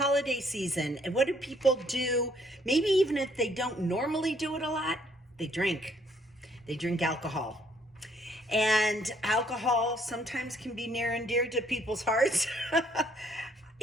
season, and what do people do? Maybe even if they don't normally do it a lot, they drink. They drink alcohol. And alcohol sometimes can be near and dear to people's hearts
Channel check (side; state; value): both; normal; correlation 0.66